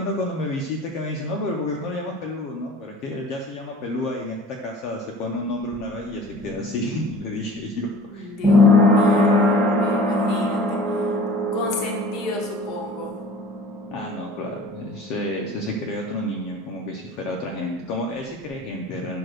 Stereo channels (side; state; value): both; normal; correlation 0.43